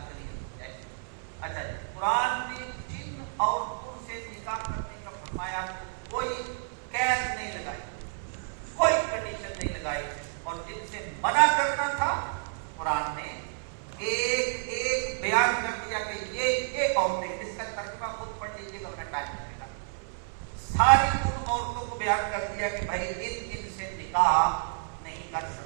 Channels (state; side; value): silent; left; 58 dB below the other